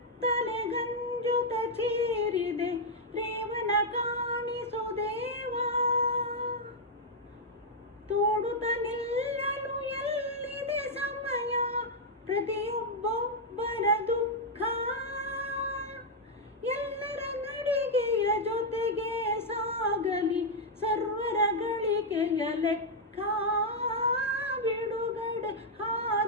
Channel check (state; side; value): normal; both; correlation -0.03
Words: ಗಂಜುತ ಚೀರಿದೆ, ರೇವನ ಕಾಣಿಸು ದೇವ. ತೋಡುತ್ತ ನಿಲ್ಲಲು ಎಲ್ಲಿದೆ ಸಮಯ, ಪ್ರತಿಯೊಬ್ಬೊಬ್ಬರ ದುಃಖ. ಎಲ್ಲರ ನಡಿಗೆಯ ಜೊತೆಗೆ ಸಾಗಲಿ ಸರ್ವರ ಗಳಿಕೆಯ ಲೆಕ್ಕ. ಬಿಡುಗಡೆ